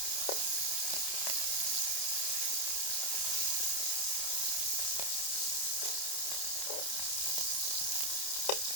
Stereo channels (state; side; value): late; right; 29 ms